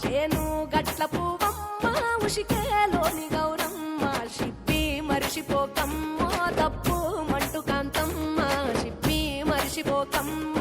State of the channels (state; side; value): identical; both; correlation 1.00